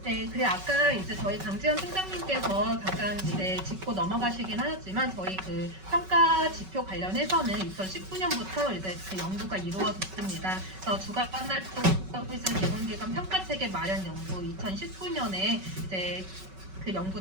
네, 그래 아까 이제 저희 강지현 팀장님께서 잠깐 이제 짚고 넘어가시긴 하셨지만 저희 그 평가 지표 관련해서는 2019년부터 이제 그 연구가 이루어졌습니다. 그래서 주간 활동 서비스 제공기관 평가 체계 마련 연구 2019년에 이제 그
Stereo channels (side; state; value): left; late; 5.3 ms